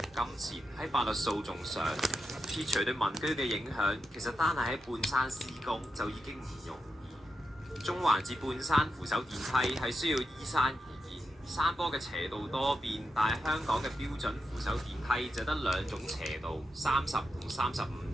金錢喺法律訴訟上。撇除對民居嘅影響，其實單係喺半山施工就已經唔容易。中環至半山扶手電梯係需要依山而建，山坡嘅斜度多變，但係香港嘅標準扶手電梯就得兩種斜度，30同35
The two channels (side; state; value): both; normal; correlation 0.87